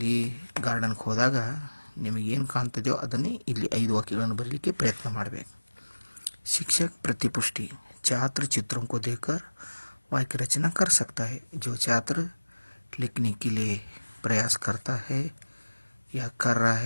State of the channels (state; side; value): inverted; both; correlation -1.00